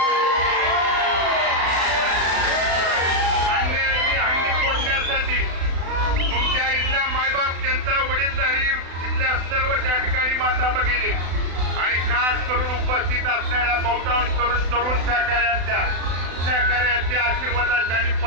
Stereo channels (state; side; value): late; left; 36 ms